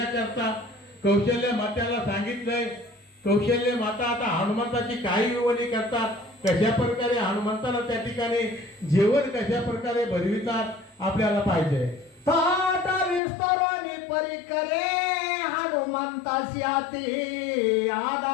कौशल्य मात्याला सांगितलंय. कौशल्य माता आता हनुमंताची काही विवणी करतात, कशा प्रकारे हनुमंताला त्या ठिकाणी जेवण कशा प्रकारे भरवितात आपल्याला पाहिजे. ताट विस्ताराने परिकरे हनुमान हनुमंताशी आती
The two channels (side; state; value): right; drops out; at 13.2 s